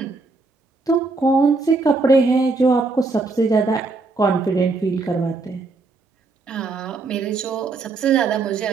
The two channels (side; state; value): left; quieter; 3.8 dB